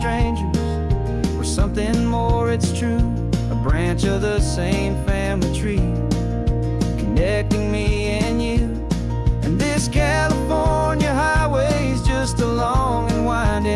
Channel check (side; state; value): both; identical; correlation 1.00